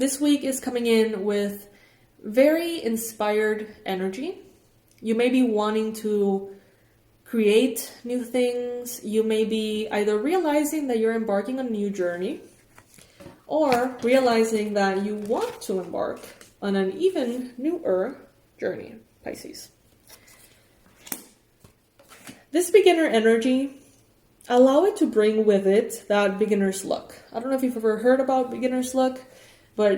week is coming in with very inspired energy. You may be wanting to create new things. You may be either realizing that you're embarking on a new journey, or realizing that you want to embark on an even newer journey, Pisces. This beginner energy, allow it to bring with it that beginner's luck. I don't know if you've ever heard about beginner's luck,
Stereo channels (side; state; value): both; identical; correlation 1.00